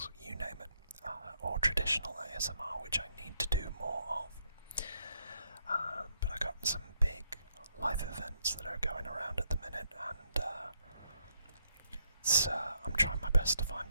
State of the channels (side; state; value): both; inverted; correlation -0.74